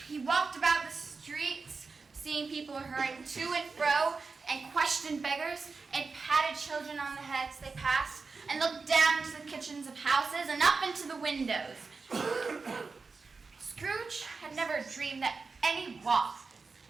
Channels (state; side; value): quieter; left; 4.4 dB